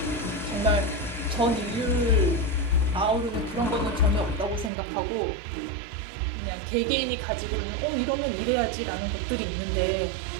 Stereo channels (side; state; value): left; drops out; at 4.7 s